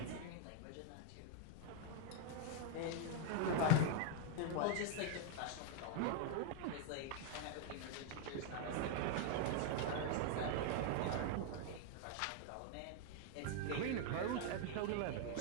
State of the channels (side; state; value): both; different; correlation 0.00